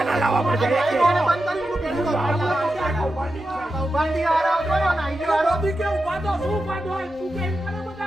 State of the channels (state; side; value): normal; both; correlation 0.90